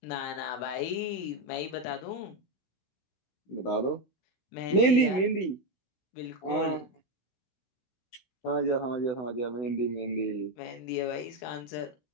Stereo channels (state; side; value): late; right; 16 ms